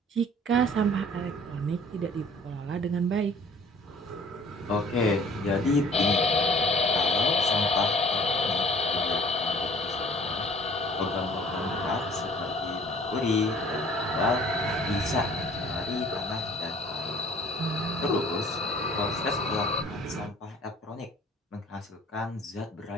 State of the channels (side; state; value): both; normal; correlation 0.51